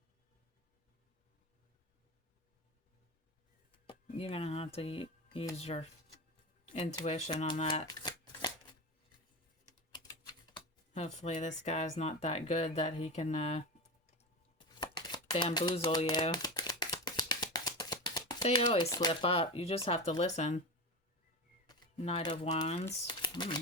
You're going to have to use your intuition on that. Hopefully this guy's not that good that he can bamboozle you. They always slip up. You just have to listen. Knight of Wands.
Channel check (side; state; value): both; normal; correlation 0.23